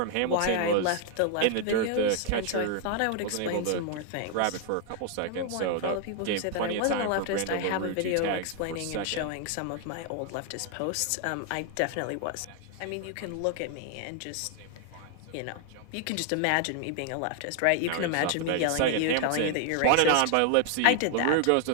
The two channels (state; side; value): different; both; correlation 0.00